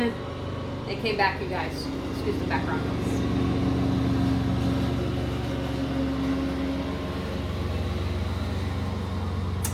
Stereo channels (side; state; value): both; identical; correlation 1.00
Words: came back, you guys. Excuse the background noise.